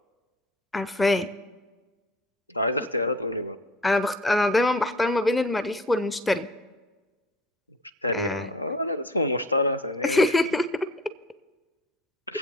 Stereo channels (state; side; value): normal; both; correlation 0.46